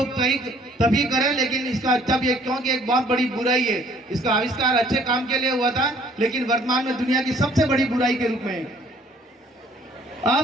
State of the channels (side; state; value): both; normal; correlation 0.59